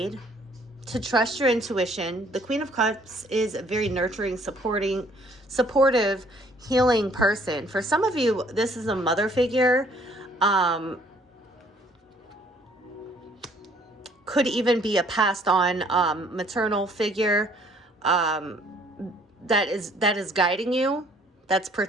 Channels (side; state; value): both; normal; correlation 0.60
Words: To trust your intuition. The Queen of Cups is a very nurturing, supportive, healing person. For some of you, this is a mother figure. Could even be a passed on maternal figure that is guiding you, that's